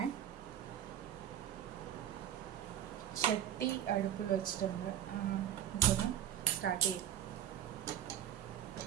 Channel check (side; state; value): left; quieter; 10.9 dB